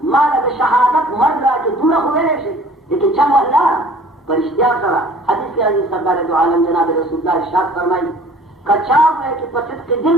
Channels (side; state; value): both; normal; correlation 0.50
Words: ما له د شهادت مرګ راکړي دومره خو ویلی شي لیکن چم الله په رښتیا سره حدیث کې راځي سرکار دو عالم جناب رسول الله ارشاد فرمایي که چا وایي چې په صدق دل